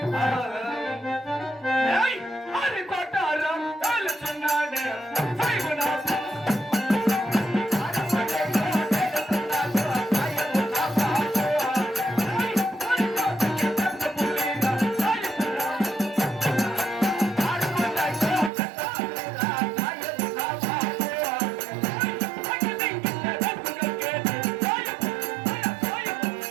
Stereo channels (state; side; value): drops out; left; at 18.5 s